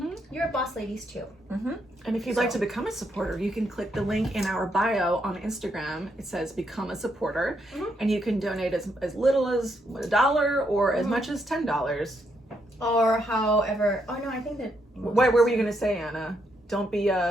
You're boss ladies too. And if you'd like to become a supporter, you can click the link in our bio on Instagram. It says become a supporter, and you can donate as little as $1 or as much as $10. Or however. Oh no, I think that. What were you gonna say, Anna? Don't be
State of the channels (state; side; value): normal; both; correlation 0.77